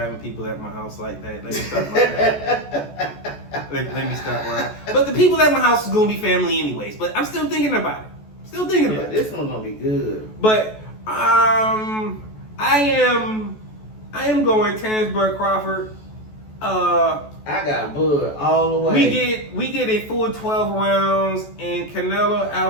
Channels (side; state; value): right; late; 14 ms